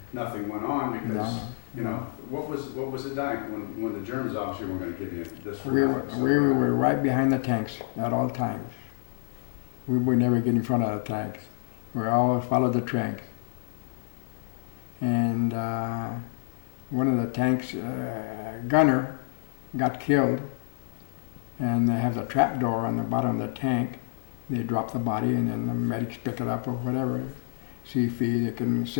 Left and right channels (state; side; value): silent; right; 57 dB below the other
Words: nothing went on because, you know, what was it like when the Germans obviously weren't going to give you this for nothing? We were right behind the tanks at all times. We would never get in front of the tanks. We always followed the tanks. And one of the tanks, gunner, got killed, and they have the trap door on the bottom of the tank. They drop the body, and then the medics pick it up or whatever, see if they can